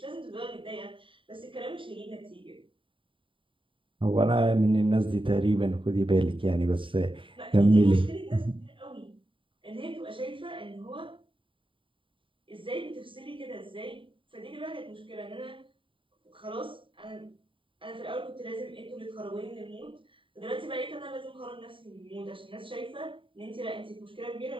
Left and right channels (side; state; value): left; late; 0.25 ms